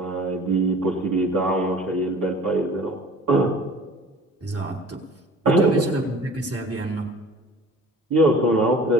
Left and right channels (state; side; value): normal; both; correlation 0.45